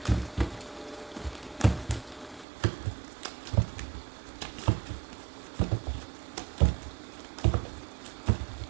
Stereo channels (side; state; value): left; drops out; at 2.5 s